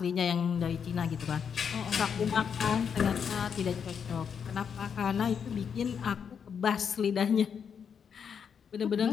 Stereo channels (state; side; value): quieter; right; 7.1 dB